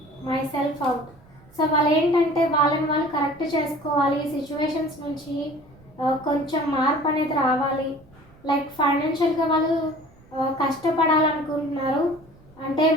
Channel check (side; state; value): right; noise; rumble, 27 dB below the sound